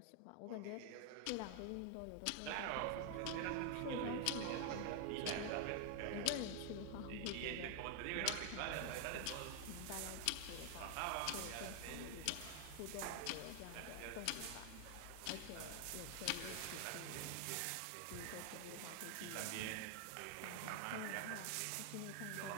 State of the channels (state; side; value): different; both; correlation 0.00